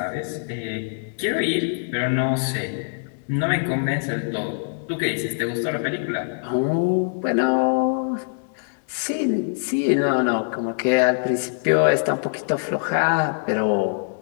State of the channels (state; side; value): silent; right; digital silence